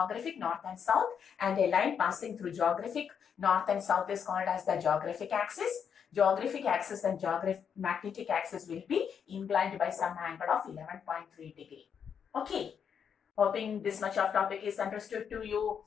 north and south, and a line passing through geographic north and south is called as the geographic axis. Geographic axis and magnetic axis will be inclined by some angle of 11.3 degree. Okay, hoping this much of topic is understood to you.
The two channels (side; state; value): right; quieter; 7.4 dB